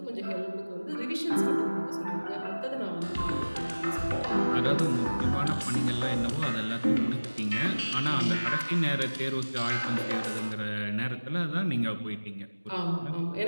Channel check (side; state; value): both; inverted; correlation -1.00